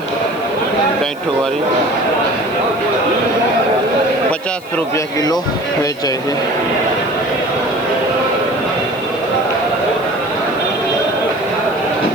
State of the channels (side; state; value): left; noise; hiss, 24 dB below the sound